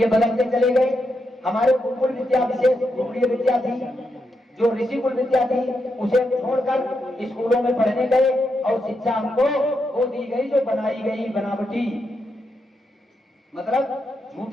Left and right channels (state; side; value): normal; both; correlation 0.83